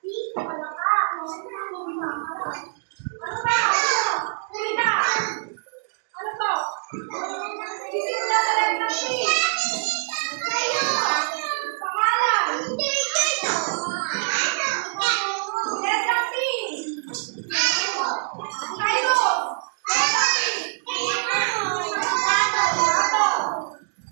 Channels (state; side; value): silent; left; digital silence